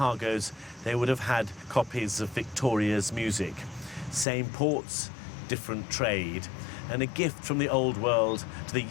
they would have had copies of Victoria's music. Same ports, different trade, and a gift from the old world to the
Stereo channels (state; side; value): drops out; right; at 4.2 s